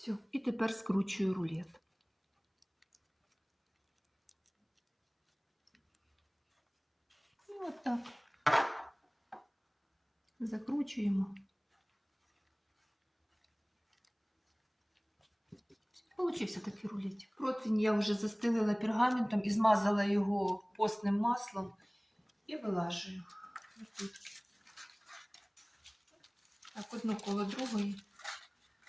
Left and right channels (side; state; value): both; identical; correlation 1.00